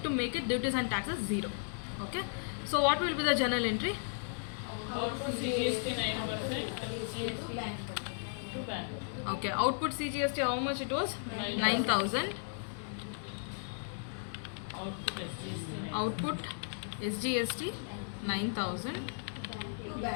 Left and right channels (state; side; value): silent; right; digital silence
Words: to make it duties and taxes 0. Okay. So what will be the journal entry? output CGST 9% to bank. Okay. Output CGST how much it was? 9,000. Output SGST. Output SGST 9,000. To